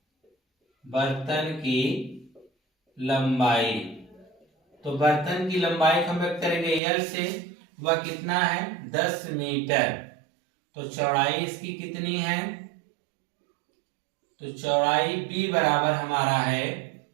लंबाई। तो बर्तन की लंबाई को हम व्यक्त करेंगे L से, वह कितना है 10 मीटर। तो चौड़ाई इसकी कितनी है, तो चौड़ाई B बराबर हमारा है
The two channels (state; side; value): drops out; left; at 6.8 s